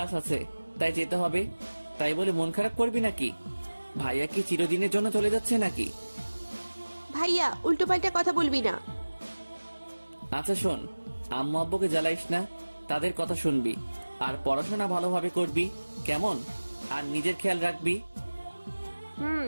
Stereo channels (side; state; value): both; inverted; correlation -1.00